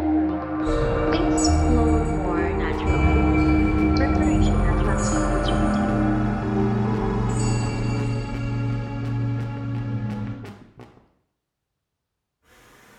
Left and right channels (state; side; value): identical; both; correlation 1.00